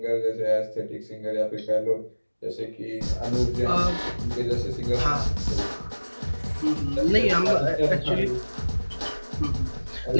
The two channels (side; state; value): both; inverted; correlation -1.00